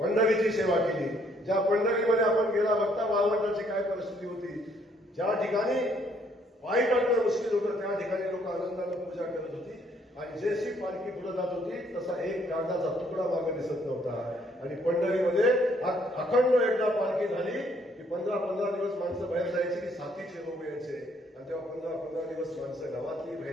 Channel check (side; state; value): both; normal; correlation 0.67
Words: सेवा केली. ज्या पंढरीमध्ये आपण गेला बघता वाळवंटाची काय परिस्थिती होती, ज्या ठिकाणी पायी टाकणं मुश्किल होतं, त्या ठिकाणी लोक आनंदाने पूजा करत होती. आणि जशी पालखी पुढे जात होती तसा एक कागदाचा तुकडा मागे दिसत नव्हता. आणि पंढरीमध्ये अखंड एकदा पालखी झाली की 15-15 दिवस माणसं बाहेर जायची, की साथीचे रोग यायचे, आणि तेव्हा 15-15 दिवस माणसं गावातली